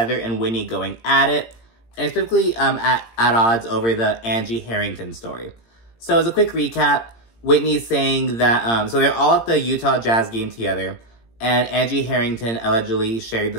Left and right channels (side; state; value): right; late; 17 ms